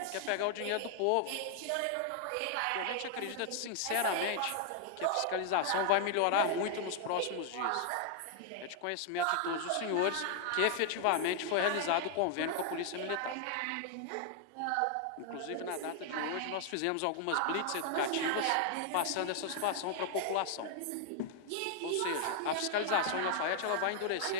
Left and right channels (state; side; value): different; both; correlation 0.00